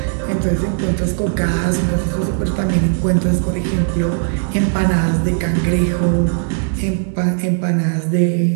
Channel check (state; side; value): silent; left; digital silence